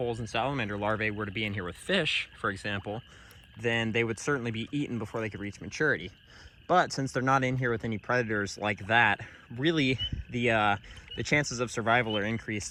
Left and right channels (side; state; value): both; identical; correlation 1.00